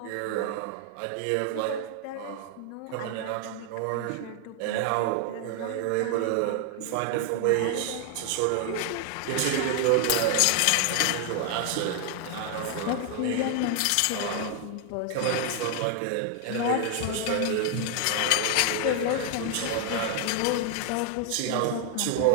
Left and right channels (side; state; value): both; different; correlation 0.00